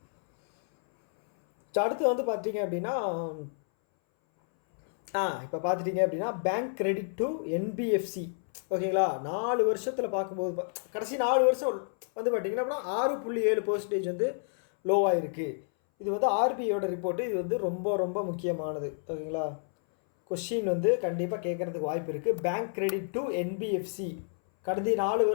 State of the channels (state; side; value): silent; right; 58 dB below the other